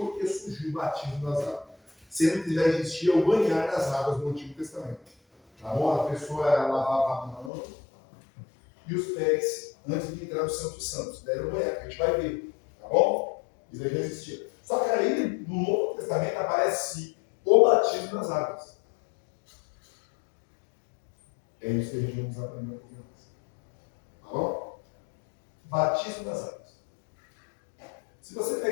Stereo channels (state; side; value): drops out; right; at 7.5 s